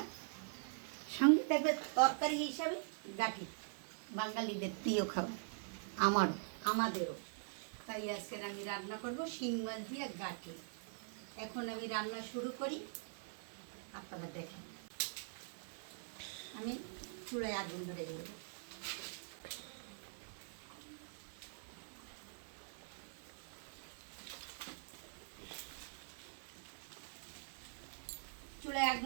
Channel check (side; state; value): left; silent; digital silence